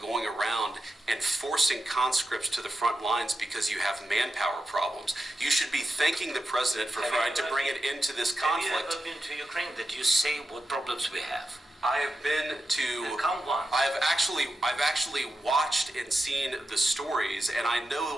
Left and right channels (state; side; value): normal; both; correlation 0.90